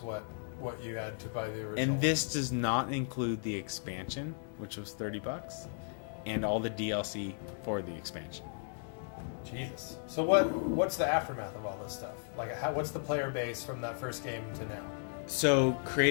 what you had to buy the original. And this does not include the expansion, which was $30, and all the DLC for the expansion. Jesus. So what's the aftermath of all this stuff? Like, what's the player base from that first game to now? So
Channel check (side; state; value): right; silent; digital silence